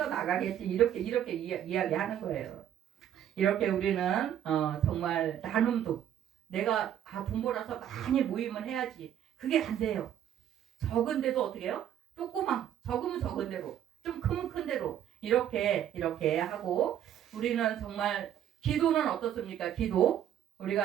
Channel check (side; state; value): left; quieter; 10.4 dB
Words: 이렇게 이야기하는 거예요. 이렇게 우리는 정말 나눔도 내가 돈 벌어서 많이 모임을 해야지 그게 안 돼요. 적은데도 어떻게 해요? 적으면 적은 대로 좀 크면 큰 대로 이렇게 하고 우리는 정말 기도는 어떻습니까? 기도